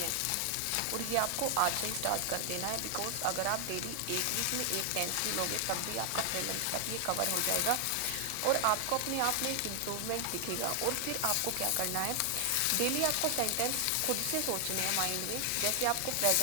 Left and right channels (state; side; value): different; both; correlation 0.00